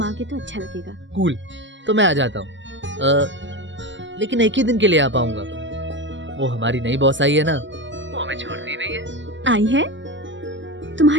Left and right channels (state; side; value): late; left; 0.54 ms